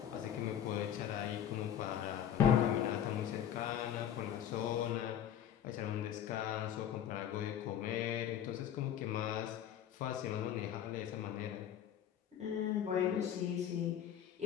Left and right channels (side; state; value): right; quieter; 9.9 dB